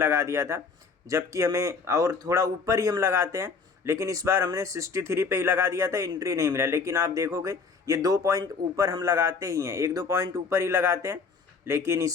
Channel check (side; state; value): right; quieter; 5.0 dB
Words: दिया था, जबकि हमें और थोड़ा ऊपर ही हम लगाते हैं। लेकिन इस बार हमने 63 पे ही लगा दिया था, एंट्री नहीं मिला। लेकिन आप देखोगे ये 2 पॉइंट ऊपर हम लगाते ही हैं, 1-2 पॉइंट ऊपर ही लगाते हैं। लेकिन